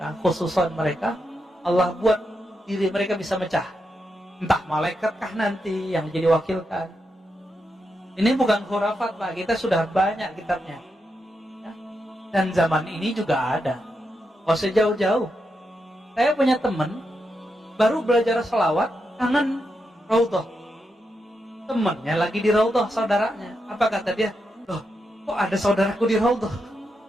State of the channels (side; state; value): both; normal; correlation 0.85